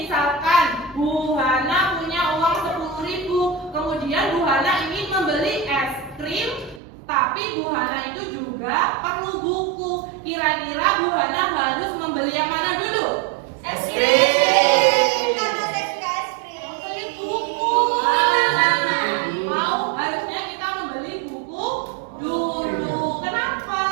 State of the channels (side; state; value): left; drops out; at 6.8 s